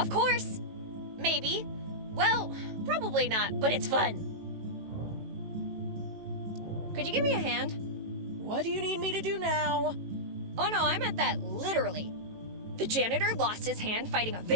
course. Maybe. Well, probably not, but it's fun. Could you give me a hand? What do you need me to do now? Oh no, I meant that literally. The janitor lost his hand fighting a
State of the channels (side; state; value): left; late; 18 ms